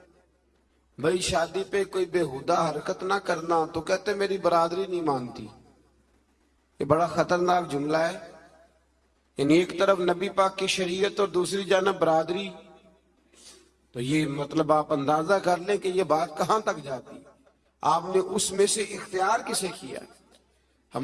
بھائی شادی پہ کوئی بےہودہ حرکت نہ کرنا تو کہتے میری برادری نہیں مانتی۔ یہ بڑا خطرناک جملہ ہے، یعنی ایک طرف نبی پاک کی شریعت اور دوسری جانب برادری، تو یہ مطلب آپ اندازہ کر لیں کہ یہ بات کہاں تک جاتی۔ آپ نے اس میں سے اختیار کسے کیا؟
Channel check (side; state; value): both; identical; correlation 1.00